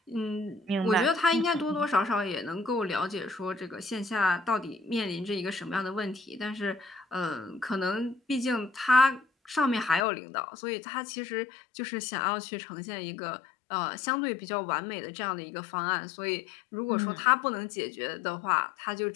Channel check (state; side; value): drops out; right; at 10.1 s